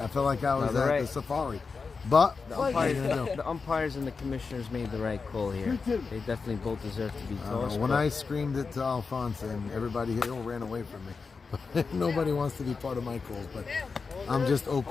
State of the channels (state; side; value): quieter; right; 4.8 dB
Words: felt like I was No, at they're the right. safari. But the what are you gonna do? the umpires and the commissioners made the right call here. They definitely both deserve to be tossed. When but- I screamed it to Alphonse and everybody here ran away from me. Nobody wants to be part of my calls, but I'm just